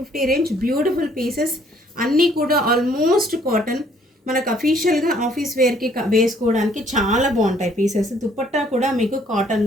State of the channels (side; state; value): both; normal; correlation 0.63